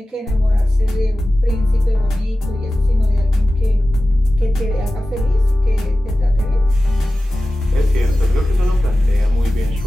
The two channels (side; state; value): both; normal; correlation 0.95